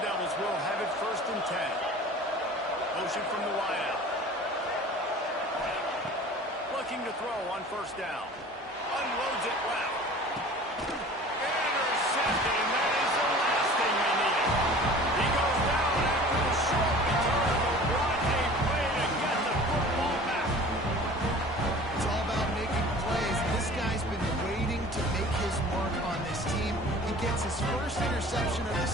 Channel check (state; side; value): normal; both; correlation 0.44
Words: Devils will have it 1st and 10. Motion from the wideout. looking to throw on first down. Unloads it left. Intercepted, and that is the last thing they needed. He goes down after the short return, but what a play to get the football back. It's all about making plays. This guy's been waiting to make his mark on this team. He gets his first interception of the